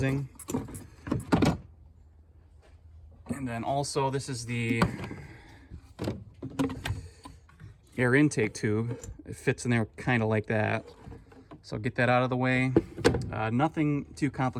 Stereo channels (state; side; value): identical; both; correlation 1.00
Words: And then also this is the air intake tube. It fits in there kind of like that. So I'll get that out of the way. Nothing too